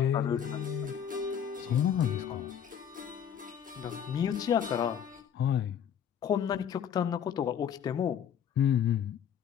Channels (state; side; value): quieter; right; 8.6 dB